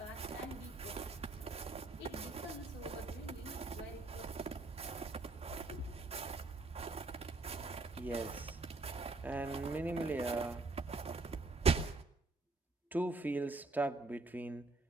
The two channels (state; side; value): quieter; left; 3.4 dB